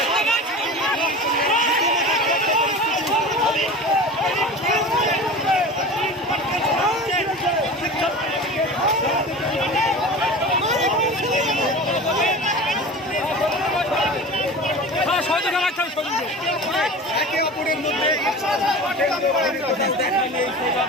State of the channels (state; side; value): normal; both; correlation 0.34